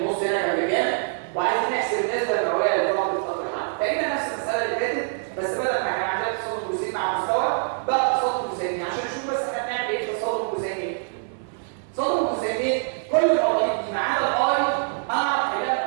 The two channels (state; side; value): silent; left; 62 dB below the other